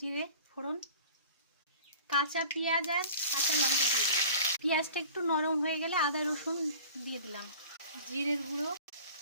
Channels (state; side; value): inverted; both; correlation -0.44